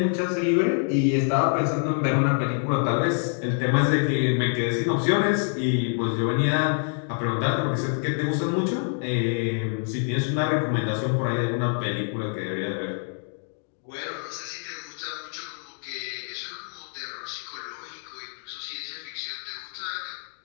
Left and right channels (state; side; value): silent; right; 61 dB below the other